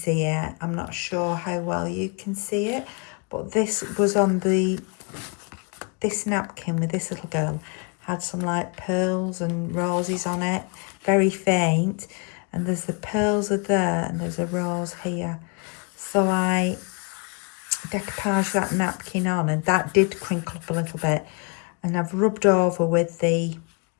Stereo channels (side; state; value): right; quieter; 34.6 dB